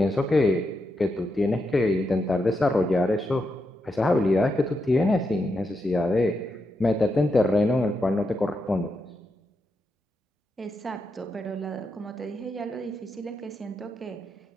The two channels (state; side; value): normal; both; correlation 0.84